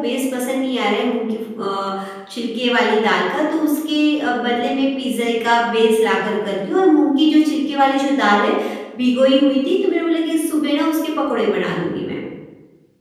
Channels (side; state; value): both; identical; correlation 1.00